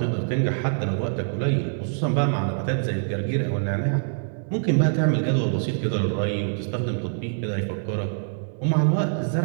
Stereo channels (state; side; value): silent; left; digital silence